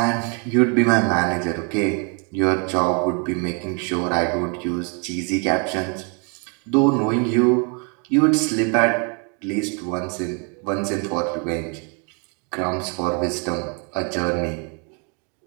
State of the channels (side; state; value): left; quieter; 36.8 dB